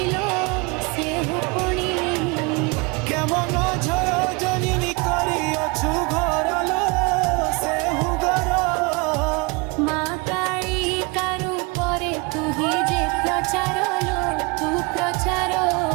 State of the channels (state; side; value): quieter; left; 28.4 dB